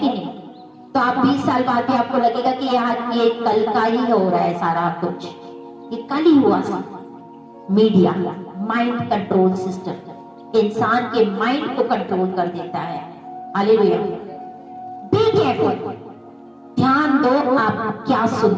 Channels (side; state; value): both; identical; correlation 1.00